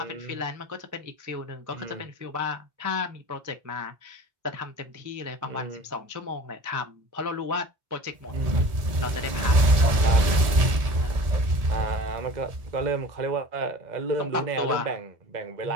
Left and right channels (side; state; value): left; late; 1.7 ms